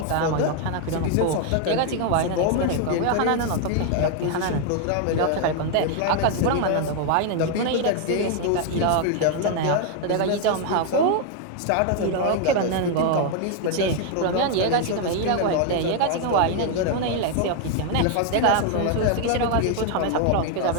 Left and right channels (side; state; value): both; different; correlation 0.00